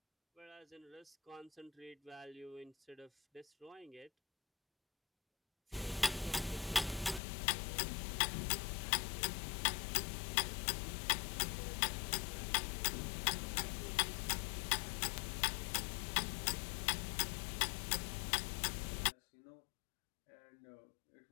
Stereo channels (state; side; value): drops out; right; at 7.2 s